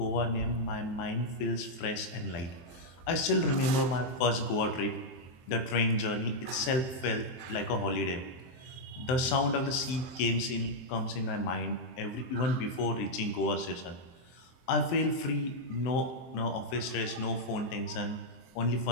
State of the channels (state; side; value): late; right; 23 ms